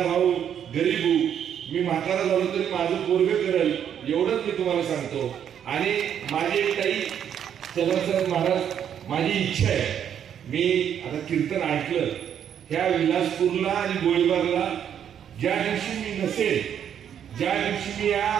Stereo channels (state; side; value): quieter; left; 9.1 dB